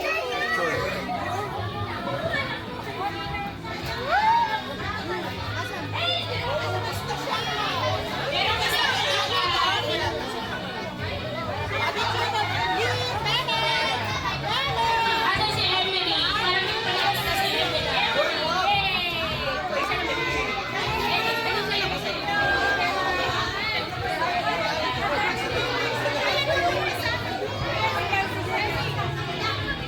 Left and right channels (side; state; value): both; identical; correlation 1.00